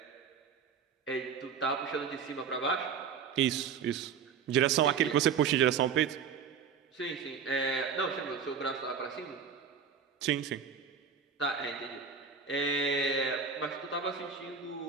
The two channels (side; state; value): left; quieter; 6.5 dB